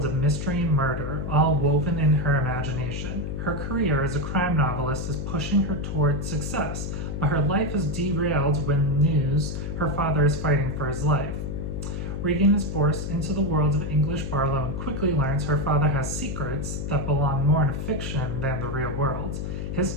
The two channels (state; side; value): noise; left; hum, 4 dB below the sound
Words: of mystery and murder, all woven in her imagination. Her career as a crime novelist is pushing her toward success, but her life is derailed when news her father is fighting for his life. Reagan is forced into the world of English Barlowe and quickly learns her father has secrets that belong more in fiction than the real world. His